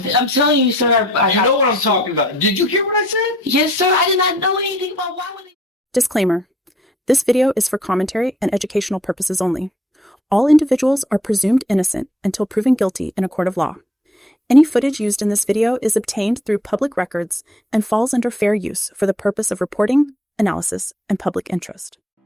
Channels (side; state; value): both; normal; correlation 0.62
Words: I'm telling you, sir. You know what I'm talking about. Did you hear what I said? Yes, sir. I did not know anything about why would they. Disclaimer. This video is for commentary and educational purposes only. All individuals are presumed innocent until proven guilty in a court of law. Any footage used in this video is obtained through public records and falls under fair use for the purpose of reporting, analysis, and public interest.